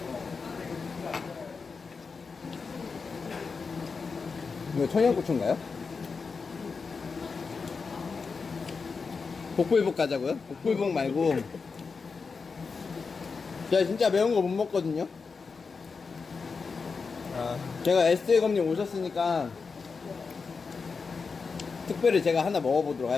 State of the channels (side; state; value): right; quieter; 4.9 dB